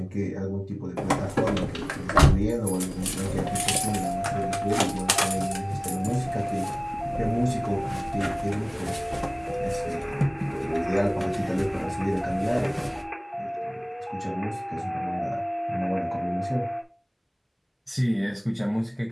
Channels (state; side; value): identical; both; correlation 1.00